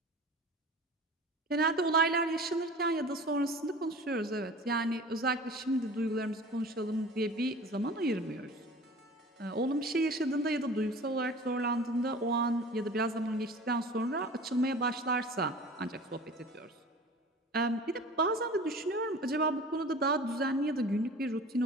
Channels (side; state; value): both; normal; correlation 0.41